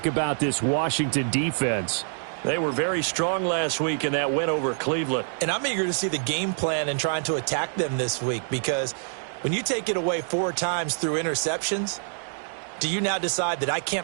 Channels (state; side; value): silent; left; digital silence